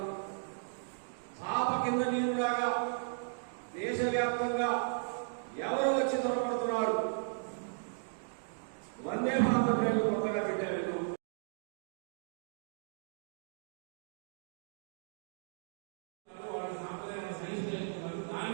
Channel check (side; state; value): left; silent; digital silence